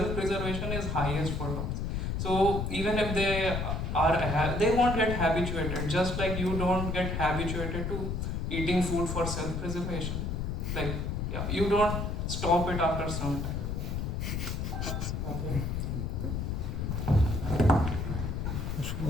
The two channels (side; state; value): left; noise; rumble, 2 dB below the sound